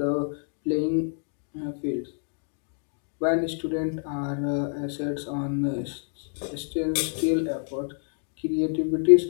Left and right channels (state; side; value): silent; right; 58 dB below the other